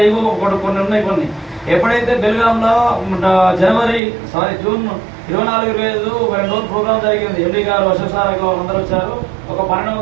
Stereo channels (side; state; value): left; drops out; at 4.0 s